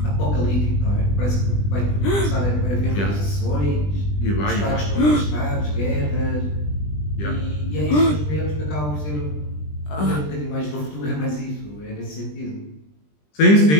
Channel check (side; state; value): right; late; 20 ms